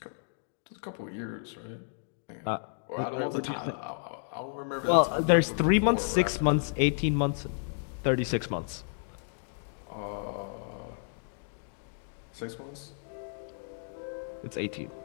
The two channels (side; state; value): right; silent; digital silence